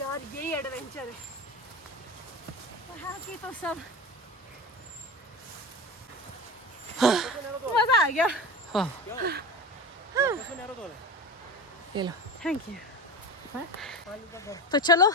यही एडवेंचर है। वहाँ की तो सब मजा आ गया। ये लो। Thank you. तो चलो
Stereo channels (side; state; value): both; normal; correlation 0.27